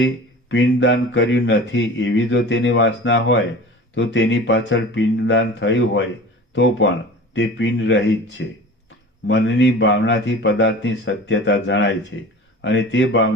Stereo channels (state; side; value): normal; both; correlation 0.38